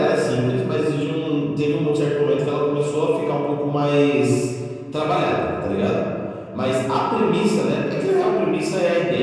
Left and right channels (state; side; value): identical; both; correlation 1.00